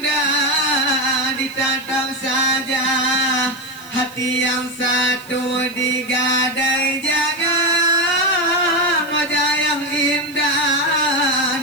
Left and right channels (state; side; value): noise; right; hiss, 21 dB below the sound